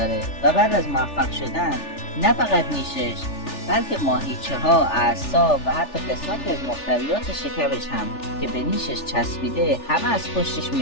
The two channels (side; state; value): right; late; 3.4 ms